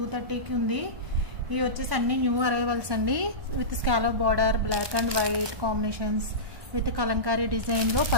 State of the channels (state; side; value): late; left; 1.1 ms